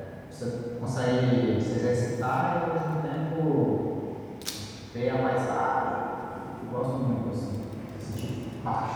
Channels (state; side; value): identical; both; correlation 1.00